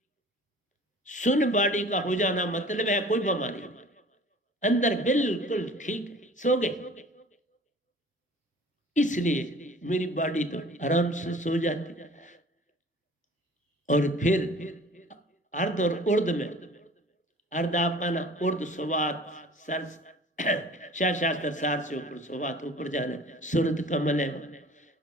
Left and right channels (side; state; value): both; normal; correlation 0.46